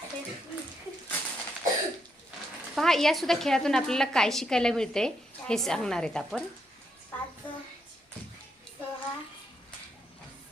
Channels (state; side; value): normal; both; correlation 0.78